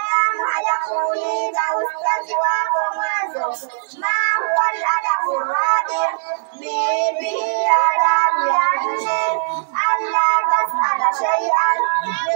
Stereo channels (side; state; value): left; silent; digital silence